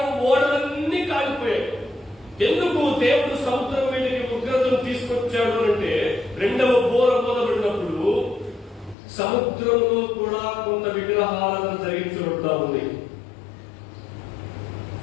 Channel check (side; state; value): right; drops out; at 9.0 s